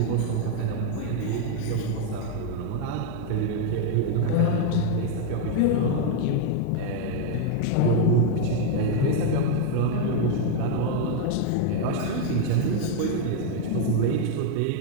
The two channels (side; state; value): both; different; correlation 0.00